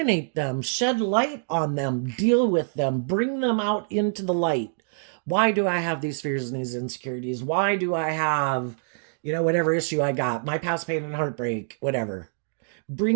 them, shed light on them, deal with them, bring them out into the light. Why do I have these fears and these insecurities? Why do I have, whatever issue I got, my past pain and heartbreak, whatever.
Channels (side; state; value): left; silent; digital silence